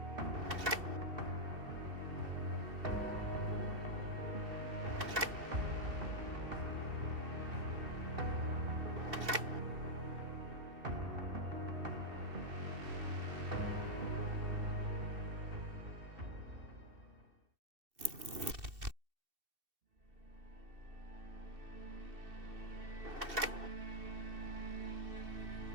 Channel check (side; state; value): left; late; 2.7 ms